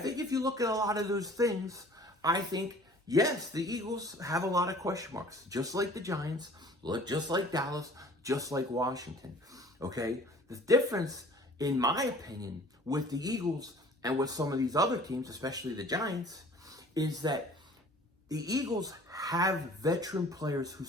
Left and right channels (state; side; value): normal; both; correlation 0.49